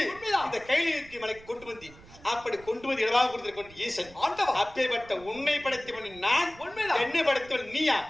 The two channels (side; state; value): right; noise; rumble, 21 dB below the sound